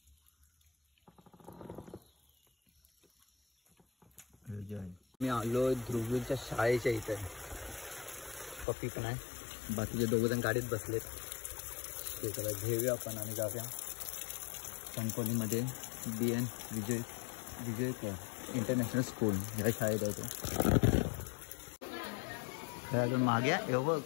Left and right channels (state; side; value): drops out; right; at 8.7 s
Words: मी आलो ध्रुवीच्या शाळेच्या इथे. पप्पी पण आहे, बाकीचे 2 जण गाडीत बसलेत. ते त्याला घेऊया आपण आणि जाऊया कणकवलीमध्ये BN विजय इंटरनॅशनल स्कूल ह्या शाळेत आहे. तो अजून मागे आहे. बघ